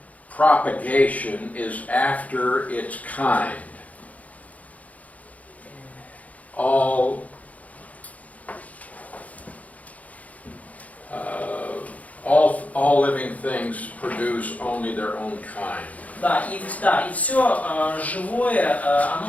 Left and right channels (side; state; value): right; late; 0.071 ms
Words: propagation is after its kind. All living things produce only their own kind. Да, и все живое,